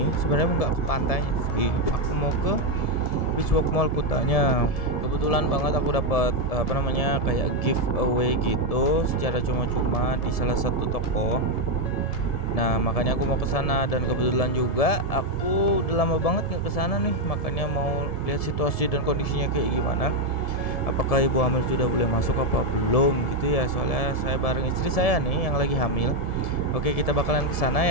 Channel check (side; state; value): right; late; 1.7 ms